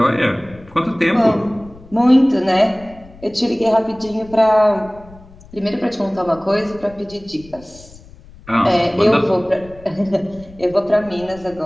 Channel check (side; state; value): left; noise; rumble, 22 dB below the sound